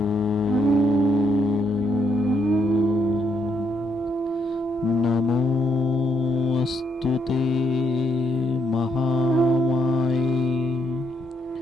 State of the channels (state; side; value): normal; both; correlation 0.75